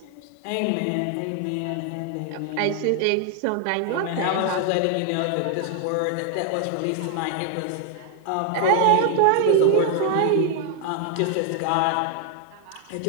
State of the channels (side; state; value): both; different; correlation 0.00